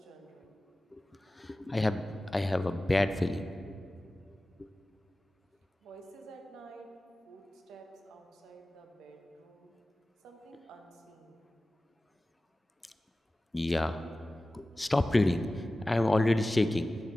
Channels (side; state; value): both; normal; correlation 0.96